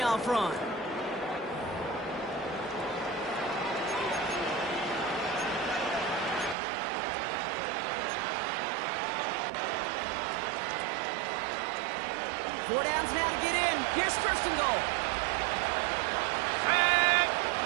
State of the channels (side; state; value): left; drops out; at 6.6 s